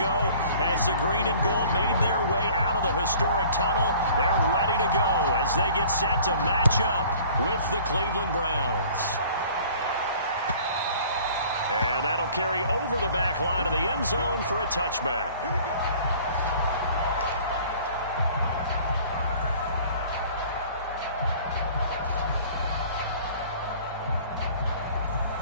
as the green and gold made their way out of the historic tunnel. They're ready to go as they get set to match up with the Cleveland Browns. And that'll carry over the back line of the end zone for a touchback. Here we go.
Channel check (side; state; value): both; inverted; correlation -0.50